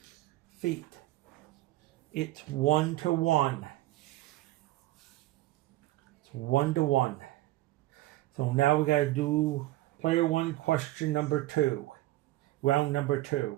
Feet. It's 1-to-1. It's 1-to-1. So now we got to do player 1, question number 2. Round number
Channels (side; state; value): left; quieter; 16.9 dB